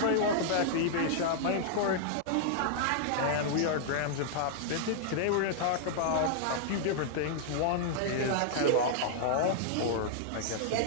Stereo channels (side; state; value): both; different; correlation -0.01